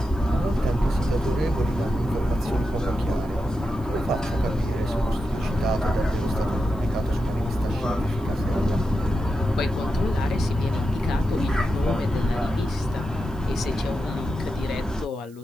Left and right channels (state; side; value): noise; right; hiss, 28 dB below the sound